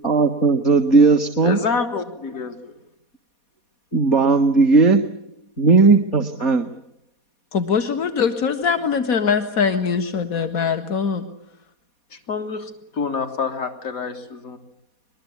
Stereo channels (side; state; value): right; late; 4.2 ms